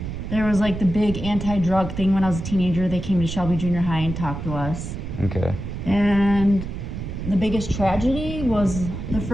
there was like the big anti-drug thing when I was a teenager. They came to Shelby Junior High and talked to us. Okay. And the biggest tragedy was the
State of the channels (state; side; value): noise; right; rumble, 7 dB below the sound